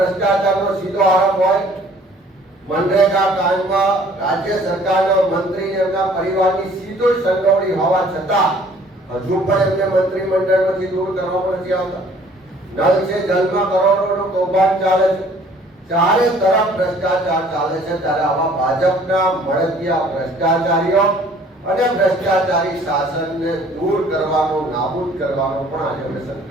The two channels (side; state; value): both; normal; correlation 0.55